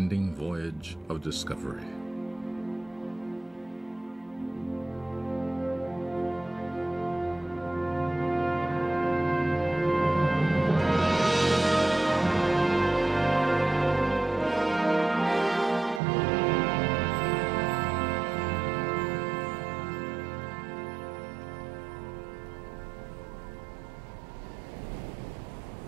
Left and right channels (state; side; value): drops out; left; at 16.0 s